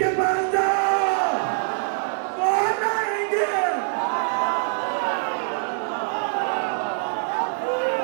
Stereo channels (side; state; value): left; silent; 63 dB below the other